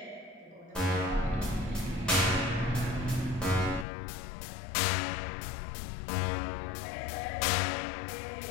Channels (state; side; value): drops out; right; at 3.9 s